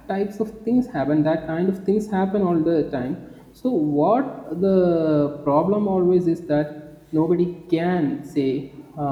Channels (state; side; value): identical; both; correlation 1.00